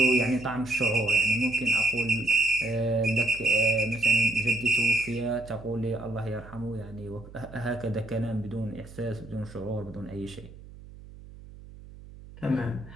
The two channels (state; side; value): noise; right; hum, 18 dB below the sound